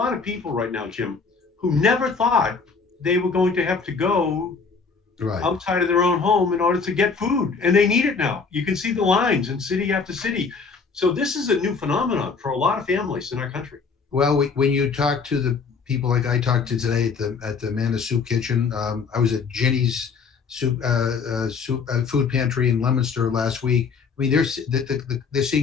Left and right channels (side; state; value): right; quieter; 5.1 dB